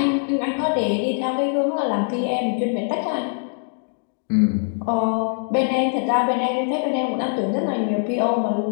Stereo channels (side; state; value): right; silent; digital silence